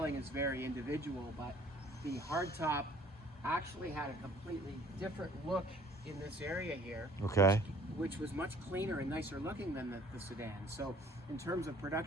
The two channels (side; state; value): both; normal; correlation 0.55